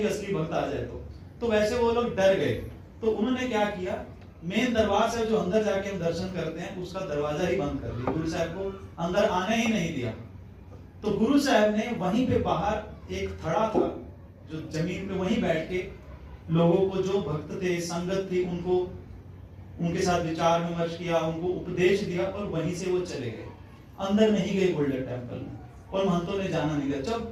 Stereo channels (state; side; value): identical; both; correlation 1.00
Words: कि असली भक्त आ जाए तो वैसे वो लोग डर गए। तो उन्होंने क्या किया, मेन दरबार से जो अंदर जाके हम दर्शन करते हैं उसका दरवाजा ही बंद कर दिया, गुरु साहब को अंदर आने ही नहीं दिया। तो गुरु साहब ने वहीं पे बाहर एक थड़ा था जो जमीन पे, वहीं बैठ के लोगों को, जो भक्त थे, संगत थी, उनको उनके साथ विचार विमर्श किया, उनको उपदेश दिया और वहीं से वो चले गए, अंदर नहीं गए गोल्डन टेम्पल में, और महंतों ने जाना नहीं दिया।